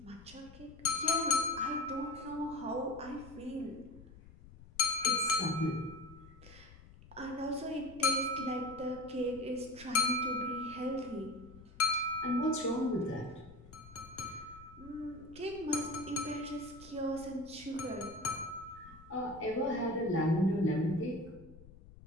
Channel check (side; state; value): left; noise; rumble, 19 dB below the sound